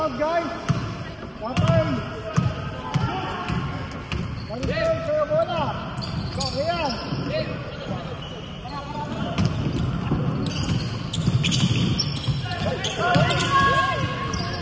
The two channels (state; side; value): identical; both; correlation 1.00